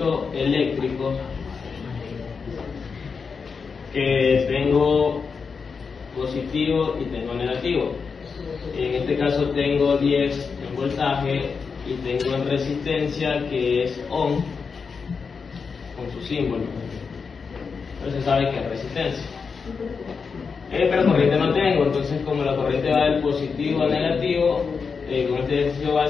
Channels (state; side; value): quieter; right; 5.4 dB